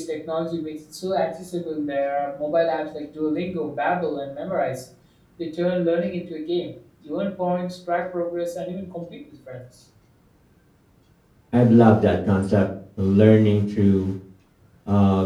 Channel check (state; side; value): identical; both; correlation 1.00